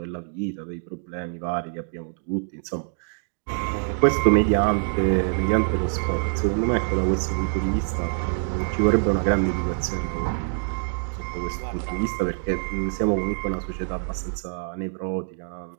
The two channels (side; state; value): left; silent; digital silence